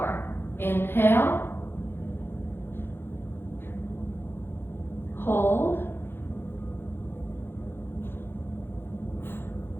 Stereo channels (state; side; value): late; right; 0.11 ms